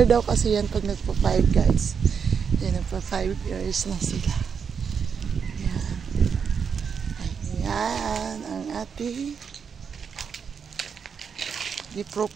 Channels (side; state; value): left; quieter; 6.5 dB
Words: daw kasi yan pag nagpa-5 guys. Yan, nagpa-5 years na sila. Yan. Ayan ang ating di-pro